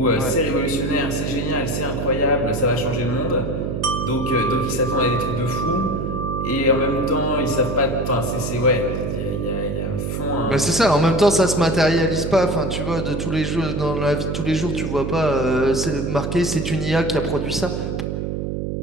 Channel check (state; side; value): noise; right; hum, 3 dB below the sound